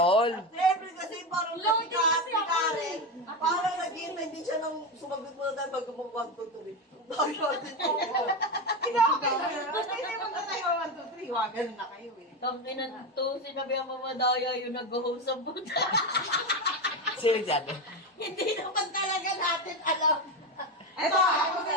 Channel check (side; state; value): both; normal; correlation 0.15